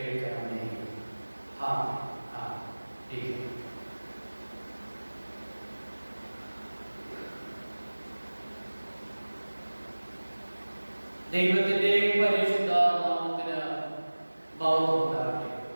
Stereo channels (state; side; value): inverted; both; correlation -1.00